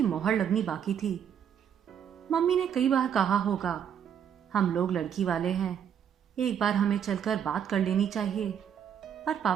मोहर लगनी बाकी थी। मम्मी ने कई बार कहा होगा, हम लोग लड़की वाले हैं, एक बार हमें चलकर बात कर लेनी चाहिए, पर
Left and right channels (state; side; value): quieter; left; 8.6 dB